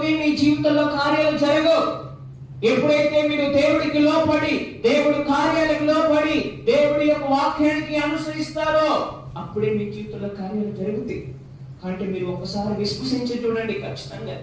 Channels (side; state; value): both; identical; correlation 1.00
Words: మీ జీవితంలో కార్యాలు జరగవు. ఎప్పుడైతే మీరు దేవుడికి లోపడి, దేవుడి కార్యాలకు లోపడి, దేవుడి యొక్క వాక్యానికి అనుసరిస్తారో అప్పుడే మీ జీవితంలో కార్యాలు జరుగుతాయి. అంటే మీరు ఒకసారి విశ్వసించి చూడండి. ఖచ్చితంగా